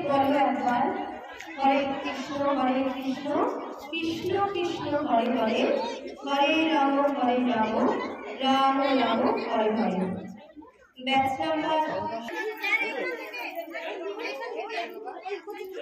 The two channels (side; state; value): both; identical; correlation 1.00